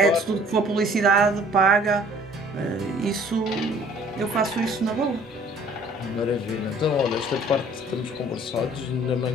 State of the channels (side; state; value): both; normal; correlation 0.54